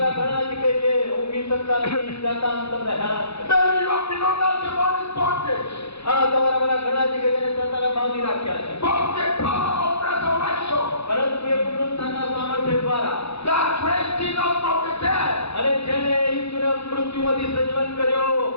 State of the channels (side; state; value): right; late; 0.79 ms